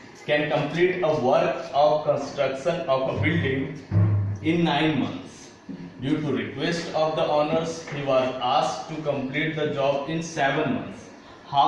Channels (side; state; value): both; identical; correlation 1.00